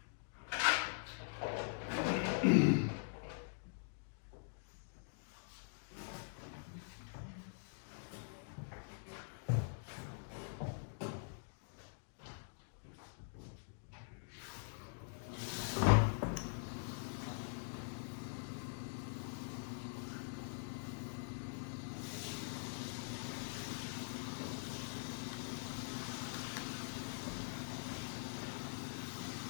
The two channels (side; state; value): right; silent; digital silence